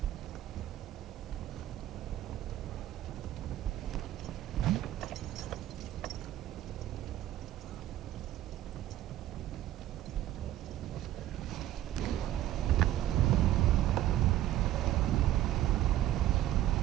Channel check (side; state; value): left; quieter; 13.3 dB